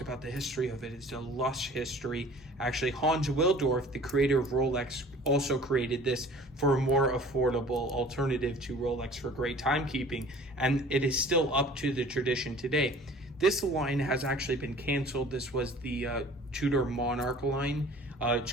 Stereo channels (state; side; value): normal; both; correlation 0.48